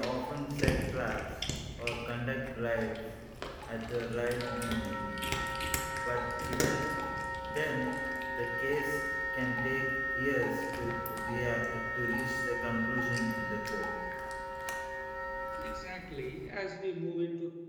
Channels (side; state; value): both; identical; correlation 1.00